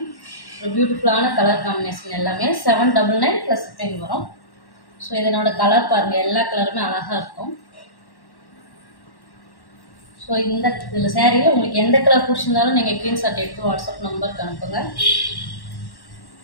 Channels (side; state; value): right; late; 1.1 ms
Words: ஒரு பியூட்டிஃபுல்லான கலர் காம்பினேஷன் எல்லாமே 799 + ஷிப்பிங் வரும். ஸோ இதனோட கலர் பாருங்கள், எல்லா கலருமே அழகாக இருக்கும். ஸோ இதில் சேரீயில் உங்களுக்கு எந்த கலர் பிடிச்சிருந்தாலும் நீங்கள் ஸ்க்ரீன்ஷாட் எடுத்து வாட்ஸ்அப் நம்பருக்கு அனுப்புங்க.